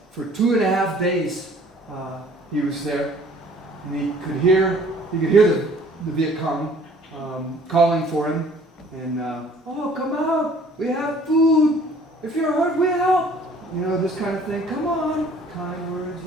for 2.5 days, he was there, and he could hear the Viet Cong calling for him, and oh, come out, we have food. If you're hurt, we help. You know, this kind of thing. Come on, kind words.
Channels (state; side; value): normal; both; correlation 0.54